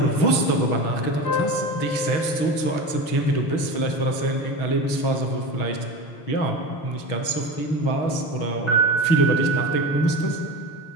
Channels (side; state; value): right; late; 6.3 ms